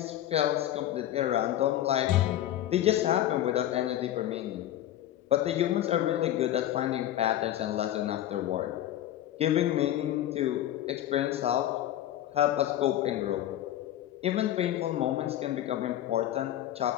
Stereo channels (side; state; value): right; quieter; 12.7 dB